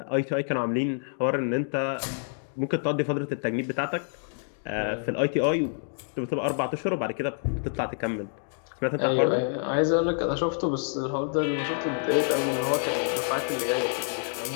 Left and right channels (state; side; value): silent; right; digital silence